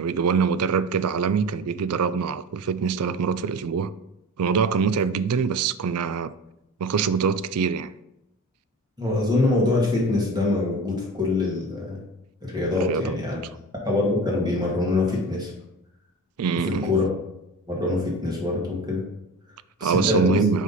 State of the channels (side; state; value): both; normal; correlation 0.33